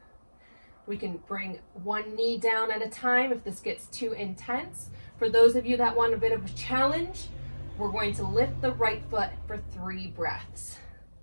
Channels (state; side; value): inverted; both; correlation -1.00